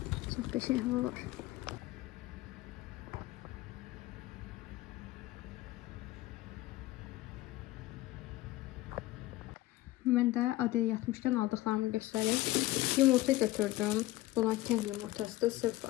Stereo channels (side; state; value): right; quieter; 17.1 dB